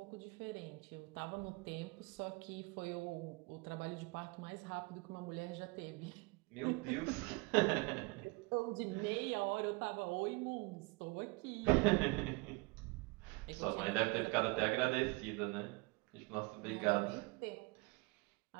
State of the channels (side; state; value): left; quieter; 26.7 dB